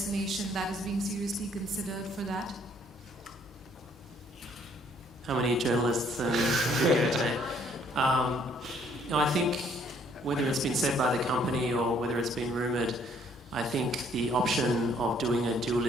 that is being seriously considered for that? How many journalists and video today? I think whether it's been said by the company or whether it's been rumoured, I think the option of doing a dual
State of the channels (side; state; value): both; normal; correlation 0.63